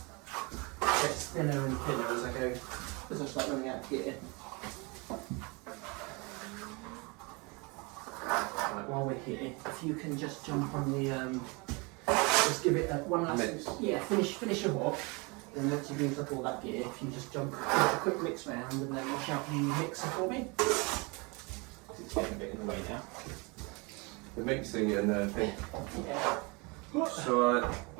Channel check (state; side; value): quieter; left; 28.8 dB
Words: it gets thinner and thinner as I go, as I start running out of gear. Right, while we're here, if you can just jump on the, just give it one last, Mix. yeah, finish your walk. Then once you've used up all that gear, if you just jump, give it a quick mix round and then wash out the mixer for me. It's getting a bit in the way now. The mixing and the thing. Yeah. So